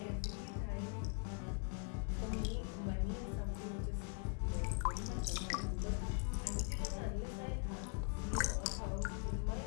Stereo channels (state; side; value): quieter; right; 35.0 dB